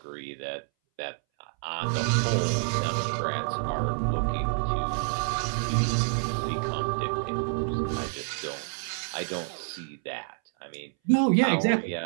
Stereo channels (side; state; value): left; silent; 59 dB below the other